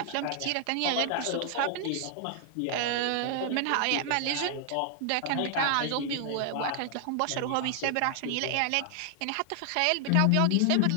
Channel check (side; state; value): both; different; correlation 0.00